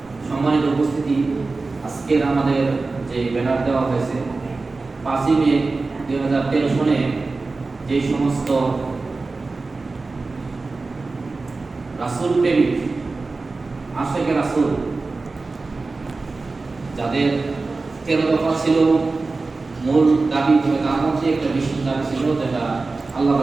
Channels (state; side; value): quieter; left; 3.7 dB